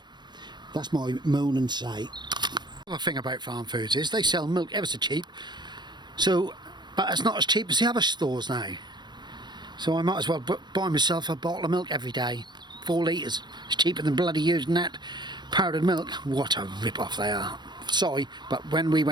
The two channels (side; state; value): left; late; 0.21 ms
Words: That's my moan and say. The other thing about Farm Foods is they sell milk ever so cheap. So, but it's not as cheap as the other stores now. So I might as well buy myself a bottle of milk every day. 4 litres. It's cheaper than bloody using that powdered milk. What a rip-off they are. Sorry, but when we